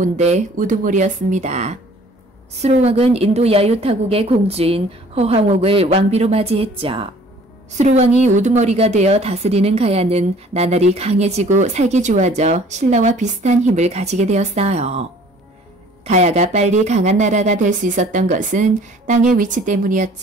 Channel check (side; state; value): both; normal; correlation 0.53